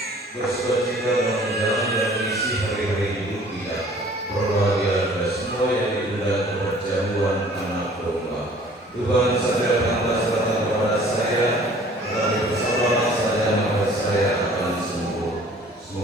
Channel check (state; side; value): normal; both; correlation 0.52